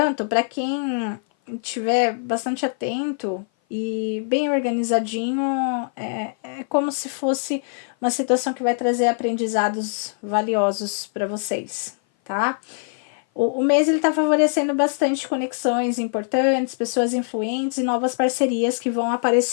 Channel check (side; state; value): right; silent; 57 dB below the other